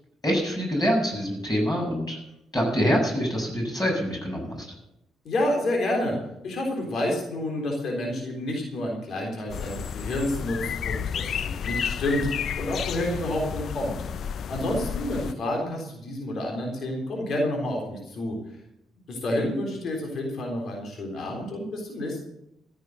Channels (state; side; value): normal; both; correlation 0.78